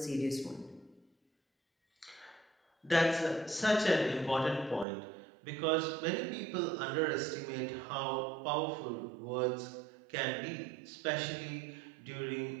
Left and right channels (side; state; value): left; drops out; at 4.9 s